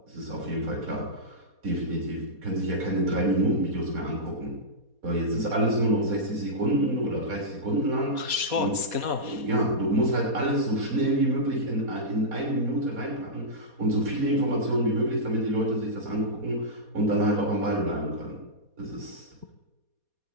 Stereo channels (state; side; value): late; left; 4.2 ms